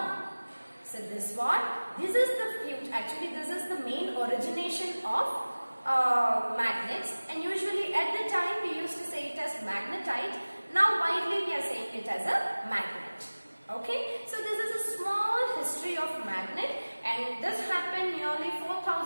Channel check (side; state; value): both; inverted; correlation -1.00